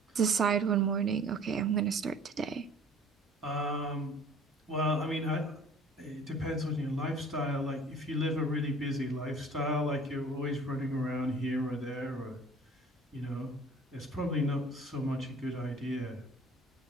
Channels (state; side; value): normal; both; correlation 0.49